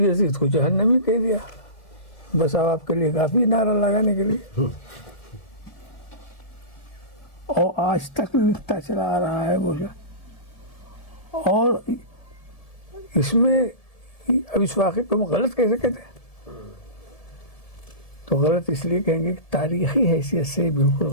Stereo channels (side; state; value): right; late; 1.7 ms